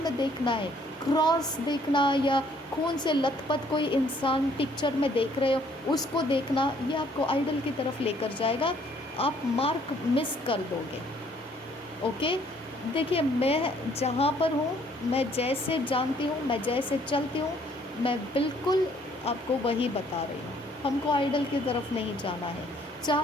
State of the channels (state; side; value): normal; both; correlation 0.63